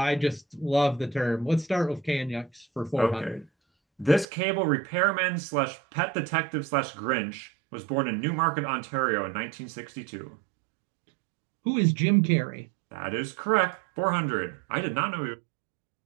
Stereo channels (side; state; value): left; drops out; at 4.2 s